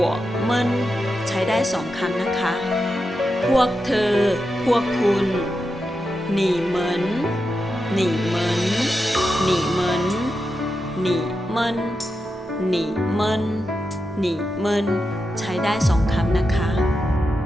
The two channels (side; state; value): both; normal; correlation 0.88